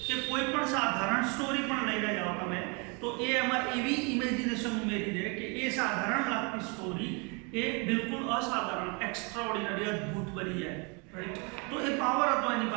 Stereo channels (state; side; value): quieter; left; 32.4 dB